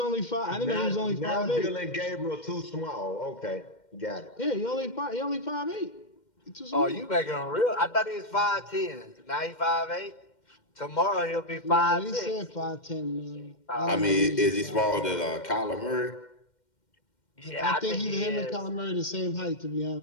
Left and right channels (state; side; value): late; right; 2.1 ms